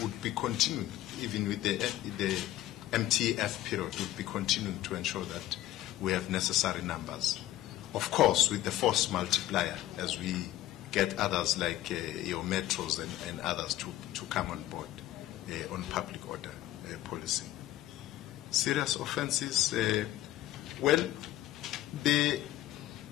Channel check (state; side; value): quieter; right; 14.6 dB